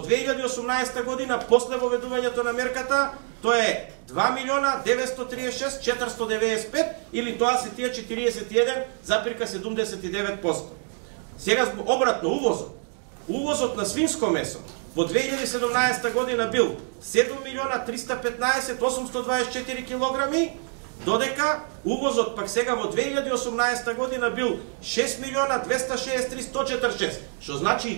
година, после воведувањето на мерката, тоа е 2.936.495, или тоа се тие 41,79%. Сега обратно, увозот. Увозот на свинско месо во 2017 година бил 7.315.824 килограми, додека увозот пак сега во 2018 година бил 6.263.146, што значи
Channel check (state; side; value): quieter; left; 39.5 dB